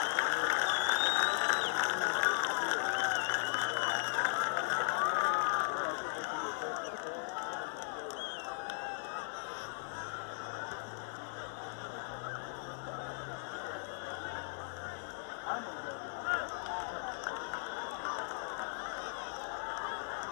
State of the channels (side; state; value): right; silent; digital silence